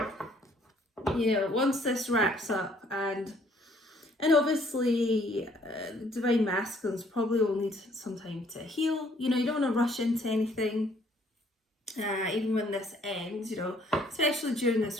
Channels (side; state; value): both; normal; correlation 0.63